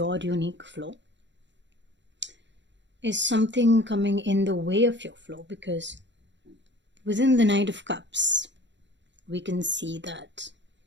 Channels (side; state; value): left; late; 0.52 ms